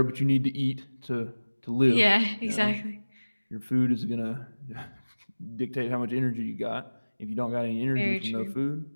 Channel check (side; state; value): both; inverted; correlation -1.00